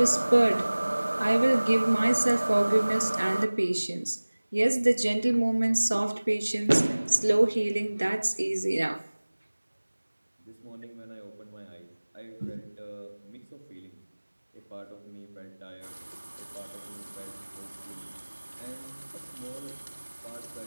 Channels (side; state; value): both; inverted; correlation -1.00